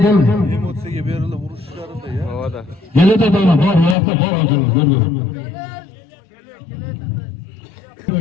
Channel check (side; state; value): right; drops out; at 4.0 s